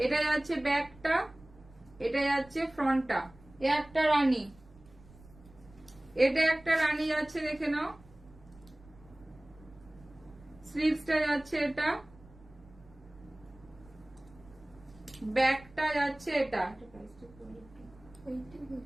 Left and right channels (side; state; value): right; noise; rumble, 24 dB below the sound